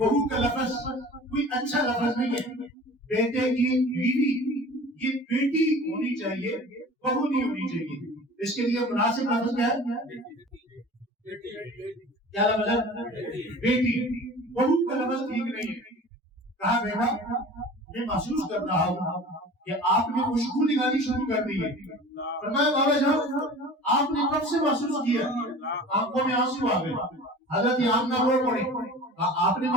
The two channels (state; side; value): normal; both; correlation 0.41